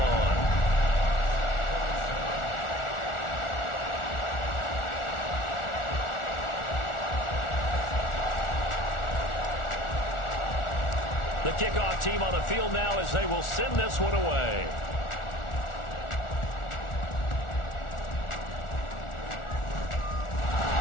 The kickoff team on the field now as they will send this one away.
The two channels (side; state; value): right; late; 1.4 ms